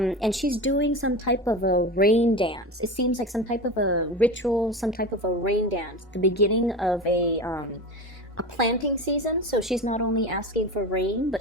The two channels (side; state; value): both; normal; correlation 0.27